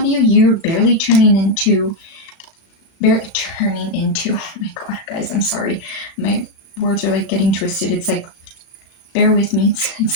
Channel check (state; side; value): late; right; 37 ms